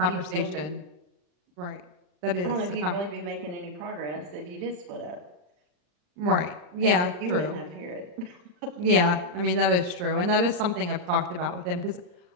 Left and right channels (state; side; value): late; left; 39 ms